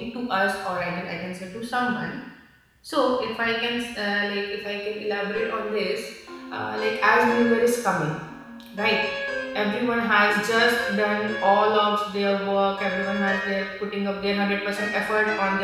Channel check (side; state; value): both; identical; correlation 1.00